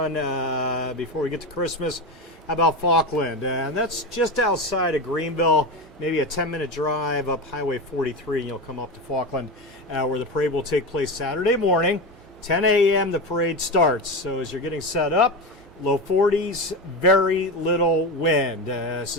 before we get to Christmas, how about Falkland? And that's just outside of Greenville, maybe a 10-minute drive up Highway 43, and you'll come up to Falkland, where the parade will take place Saturday morning. 10 a.m. the parade starts. So as you're getting set up, low 40s, very little wind.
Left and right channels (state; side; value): normal; both; correlation 0.20